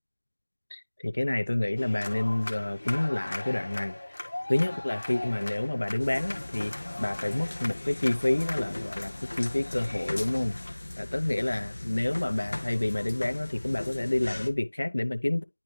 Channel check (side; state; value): both; inverted; correlation -1.00